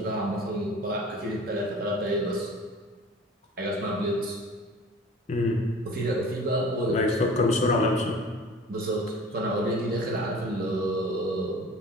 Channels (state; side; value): normal; both; correlation 0.43